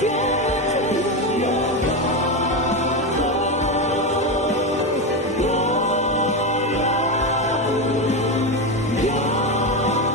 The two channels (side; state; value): both; normal; correlation 0.14